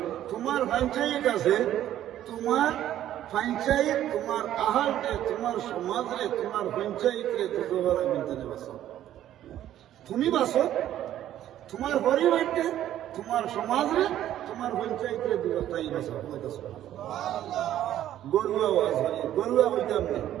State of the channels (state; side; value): quieter; left; 12.1 dB